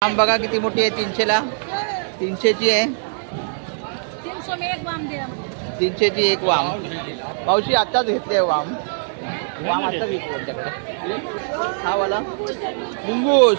वाम बघा किती मोठी आहे. 300ला 300ची आहे. 300ची एक वाम. मावशी आत्ताच घेतली आहे वाम. वाम आता विकतो त्यांच्याकडे. हा वाला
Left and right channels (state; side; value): silent; left; digital silence